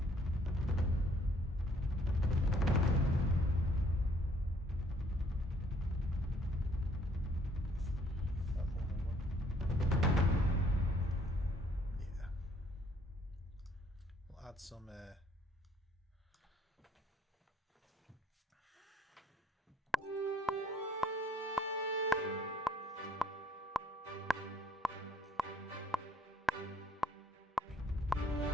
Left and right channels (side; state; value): both; normal; correlation 0.63